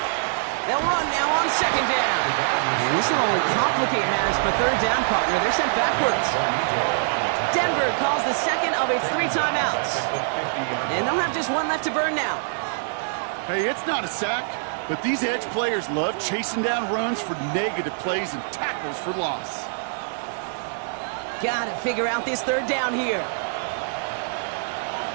They'll run now on 2nd down. And this will only complicate matters for 3rd down, partner. They're sent backwards. Denver calls the 2nd of its 3 timeouts. And they'll have just 1 left to burn now. Hey, it's not a sack, but these edge players love chasing down runs for negative plays and tackles for loss. Gotta figure out this 3rd down here.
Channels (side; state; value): left; silent; digital silence